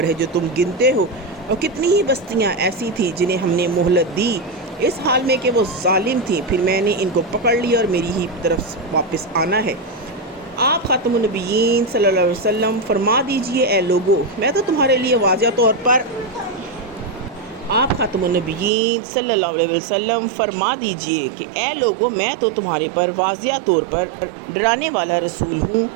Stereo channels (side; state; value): left; drops out; at 18.7 s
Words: ہے جو تم گنتے ہو، اور کتنی ہی بستیاں ایسی تھیں جنہیں ہم نے مہلت دی اس حال میں کہ وہ ظالم تھیں، پھر میں نے ان کو پکڑ لیا اور میری ہی طرف واپس آنا ہے۔ آپ خاتم النبیین صلی اللہ علیہ وسلم فرما دیجئے، اے لوگو میں تو تمہارے لیے واضح طور پر آپ خاتم النبیین صلی اللہ علیہ وسلم فرما دیجئے کہ اے لوگو میں تو تمہارے پر واضح طور پر ڈرانے والا رسول ہوں۔